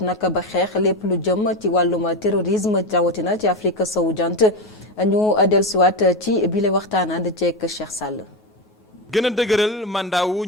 nag ba xeex lépp lu jëm ci wàllum terrorisme rawatina ci Afrique sowu jant ñu dellusiwaat ci bile waxtaan ànd ceeg Cheikh Sall. gën a dëgëral mandat wu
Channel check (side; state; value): both; normal; correlation 0.14